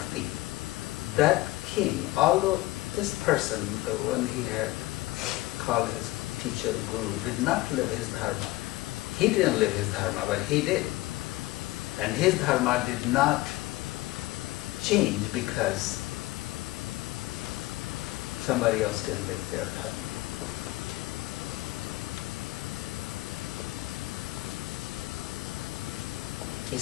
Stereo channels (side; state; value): right; quieter; 19.1 dB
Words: That king, although this person, the one he had called his teacher guru, did not live his dharma. He didn't live his dharma, but he did. And his dharma did not change because somebody else didn't live their dharma. You